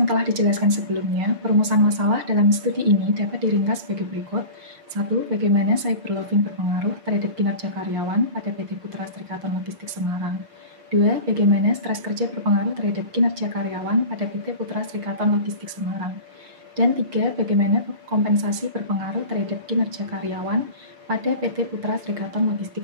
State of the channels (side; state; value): left; late; 5.7 ms